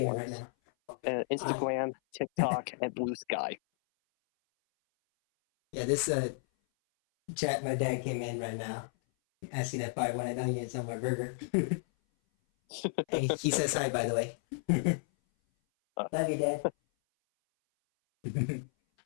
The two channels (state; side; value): silent; right; 56 dB below the other